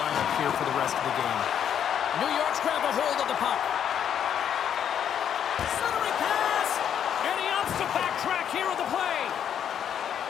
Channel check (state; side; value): quieter; right; 9.0 dB